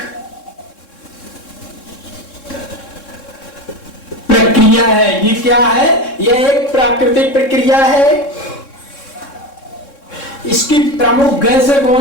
प्रक्रिया है। ये क्या है, यह एक प्राकृतिक प्रक्रिया है। इसकी प्रमुख गैसें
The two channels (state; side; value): late; right; 3.6 ms